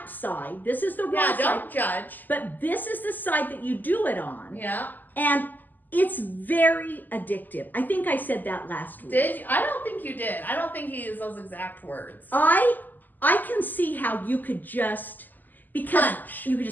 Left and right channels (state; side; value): late; right; 0.086 ms